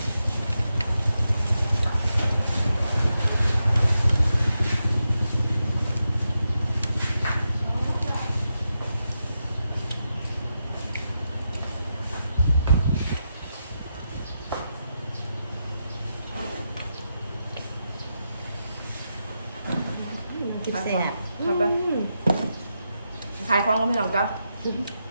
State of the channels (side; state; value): both; inverted; correlation -0.87